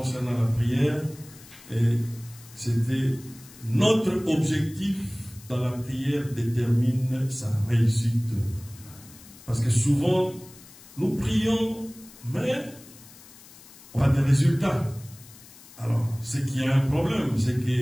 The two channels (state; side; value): noise; left; hiss, 21 dB below the sound